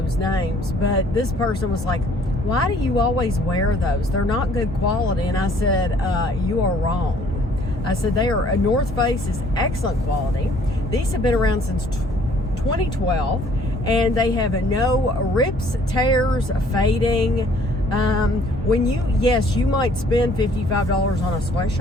names. But this person was like, why do you always wear those? They're not good quality. And I said, you are wrong. I said, North Face is excellent quality. These have been around since 2012, and they have no rips, tears, fading. You might spend $55 on a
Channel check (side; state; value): both; normal; correlation 0.59